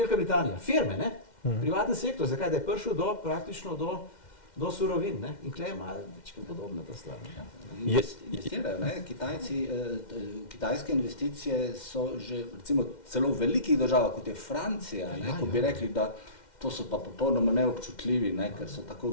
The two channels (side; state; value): right; late; 2.1 ms